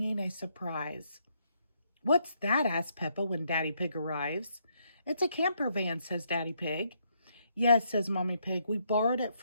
a surprise. What's that? Asks Peppa when Daddy Pig arrives. It's a camper van, says Daddy Pig. Yes, says Mommy Pig. We borrowed it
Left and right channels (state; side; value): inverted; both; correlation -0.74